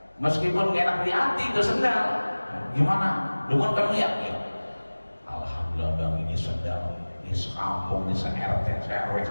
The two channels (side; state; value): both; inverted; correlation -1.00